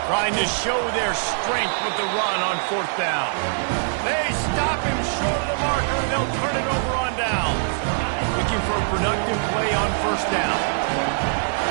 Trying to show their strength with the run on 4th down. They stop him short of the marker, and they'll turn it over on down. Looking for a productive play on 1st down.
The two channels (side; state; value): left; silent; digital silence